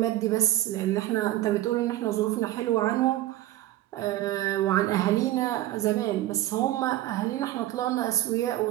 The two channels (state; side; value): quieter; left; 15.0 dB